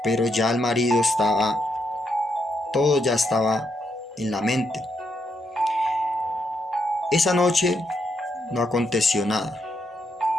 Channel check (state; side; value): normal; both; correlation 0.79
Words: Pero ya el marido todo ya estaba en la mente. Esa noche no aconteció nada.